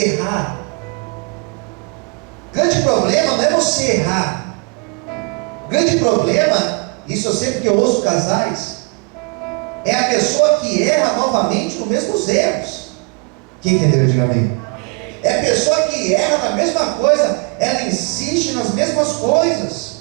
O grande problema não é você errar. O grande problema, isso eu sei porque eu ouço casais, é a pessoa que erra novamente nos mesmos erros. Quem entendeu? Diga amém. É a pessoa que erra na mesma coisa, ela insiste nas mesmas coisas.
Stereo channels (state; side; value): quieter; left; 32.5 dB